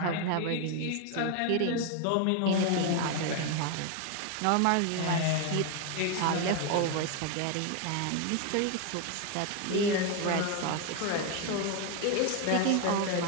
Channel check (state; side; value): different; both; correlation 0.01